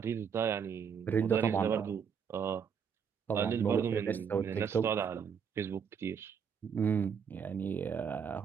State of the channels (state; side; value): quieter; left; 7.0 dB